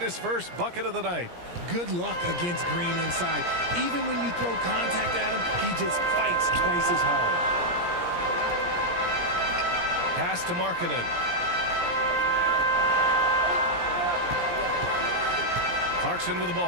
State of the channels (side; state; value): left; late; 17 ms